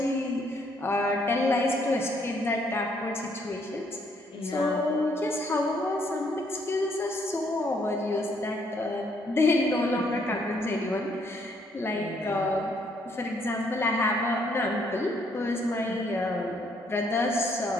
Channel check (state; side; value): normal; both; correlation 0.69